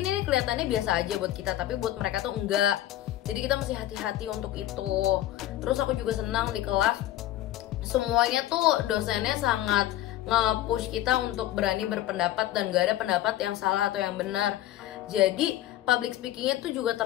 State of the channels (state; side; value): quieter; right; 13.8 dB